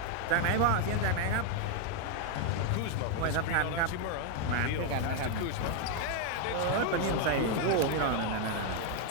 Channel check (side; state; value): both; different; correlation 0.01